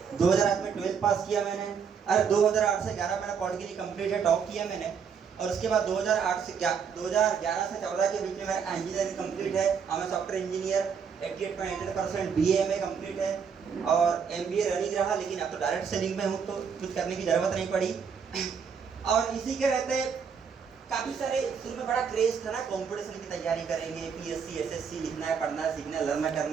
2008 में 12 पास किया मैंने। और 2008 से 11 मेरा पॉलिटिकली कंप्लीट है, टॉप किया मैंने। और उसके बाद 2011 से 14 के बीच में मेरा इंजीनियरिंग कंप्लीट है। मैं सॉफ्टवेयर इंजीनियर, 88.88% BA कंप्लीट है और MBA रनिंग रहा। लेकिन अब तो डायरेक्ट सेलिंग में हूँ तो कुछ करने की जरूरत नहीं पड़ी। और इसी के रहते काफी सारे शुरू में बड़ा क्रेज था ना, कंपटीशन की तैयारी करेंगे, PSC SSC लिखना है, पढ़ना है, सीखना है, लर्न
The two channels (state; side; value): quieter; left; 6.6 dB